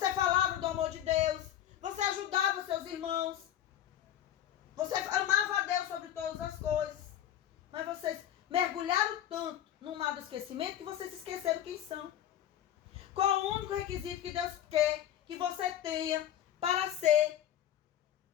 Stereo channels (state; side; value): quieter; right; 11.3 dB